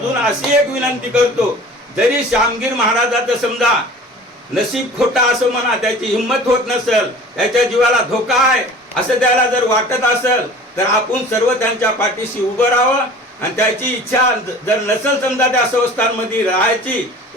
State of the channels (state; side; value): normal; both; correlation 0.43